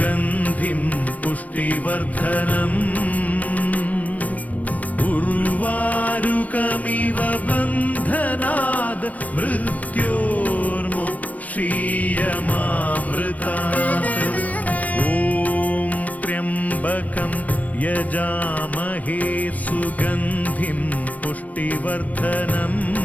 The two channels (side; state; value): right; late; 0.071 ms